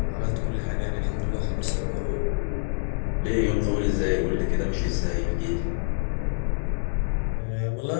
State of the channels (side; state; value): right; silent; 61 dB below the other